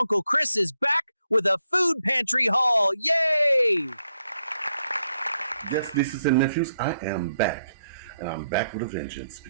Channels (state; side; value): inverted; both; correlation -0.78